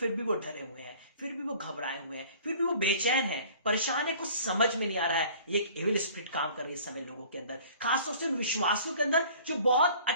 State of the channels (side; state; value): both; inverted; correlation -0.49